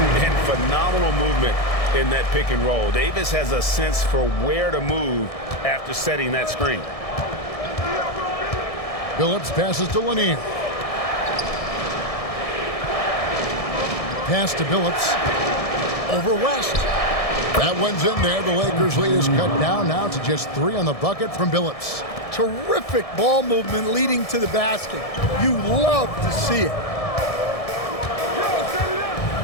And phenomenal movement in that pick and roll. Davis has a sense for where to move after setting that screen. Billups passes to Lanier. Pass to Billups. Over West. That one's in there. The Lakers' lead is cut down now to just 3 on the bucket from Billups. Terrific ball movement leading to the basket. You love to see it.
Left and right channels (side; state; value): right; late; 1.6 ms